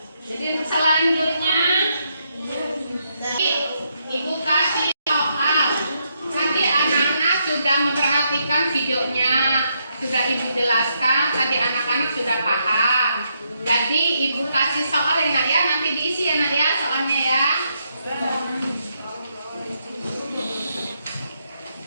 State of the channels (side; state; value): both; inverted; correlation -0.78